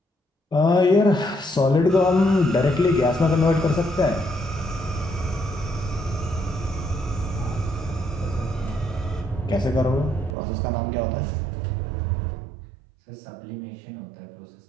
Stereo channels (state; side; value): drops out; left; at 10.4 s